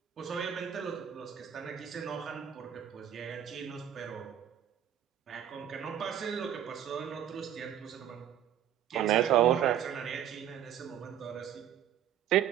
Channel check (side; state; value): left; quieter; 10.2 dB